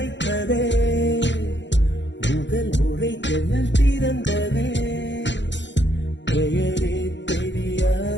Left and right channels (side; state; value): right; late; 0.52 ms